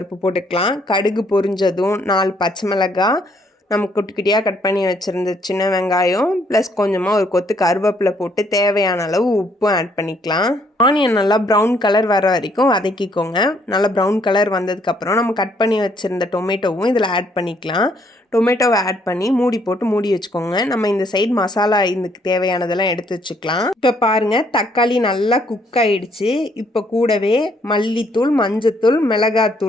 போட்டுக்கலாம். கடுகு பொரிஞ்சதும் 4 பச்சை மிளகாய், நம்ம குட்டி குட்டியாக கட் பண்ணி வச்சுருந்த சின்ன வெங்காயம் ப்ளஸ் கொஞ்சமாக ஒரு கொத்து கருவேப்பிலை போட்டு தேவையான அளவு உப்பும் ஆட் பண்ணிக்கலாம். ஆனியன் நல்லா ப்ரௌன் கலர் வர வரைக்கும் வதக்கிக்கோங்க. நல்லா ப்ரௌன் கலர் வந்ததுக்கப்புறம் நம்ம கட் பண்ணி வச்சுருந்த டொமேட்டோவும் இதில் ஆட் பண்ணிக்கலாம். டொமேட்டோவை ஆட் பண்ணி மூடி போட்டு மூடி வச்சுக்கோங்க. நம்ம இந்த சைடு மசாலா இதுக்கு தேவையானதெல்லாம் எடுத்து வச்சுக்கலாம். இப்போ பாருங்கள், தக்காளி நல்லா குக் ஆகிடுச்சு. இப்போ கூடவே மல்லித்தூள், மஞ்சத்தூள்,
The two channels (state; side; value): normal; both; correlation 0.68